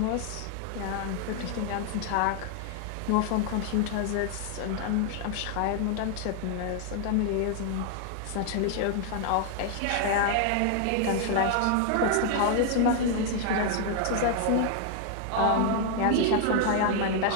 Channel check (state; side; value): different; both; correlation 0.00